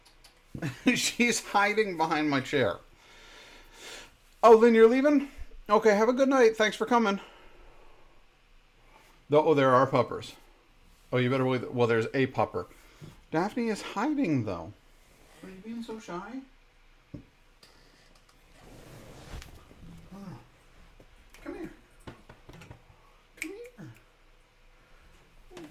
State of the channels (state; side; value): identical; both; correlation 1.00